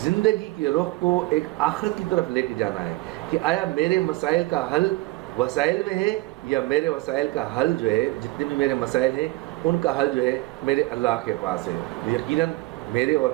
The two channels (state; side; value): quieter; left; 20.8 dB